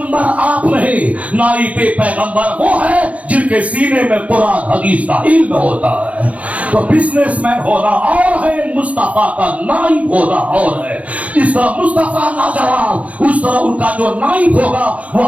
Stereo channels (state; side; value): late; left; 0.067 ms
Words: آپ نہیں, نائب پیغمبر وہ ہے جن کے سینے میں قرآن حدیث کا علم ہوتا ہے. تو بزنس مین ہونا اور ہے, مصطفیٰ کا نائب ہونا اور ہے. اس طرح مصطفیٰ لاجواب, اس طرح ان کا جو نائب ہوگا وہ